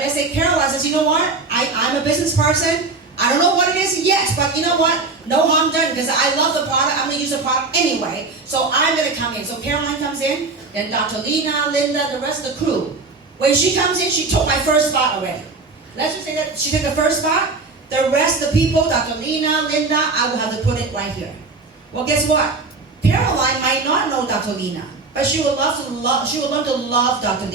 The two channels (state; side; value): quieter; left; 3.8 dB